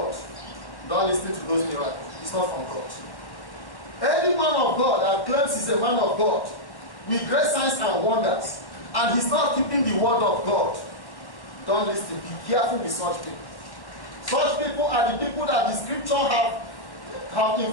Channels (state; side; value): late; right; 1.1 ms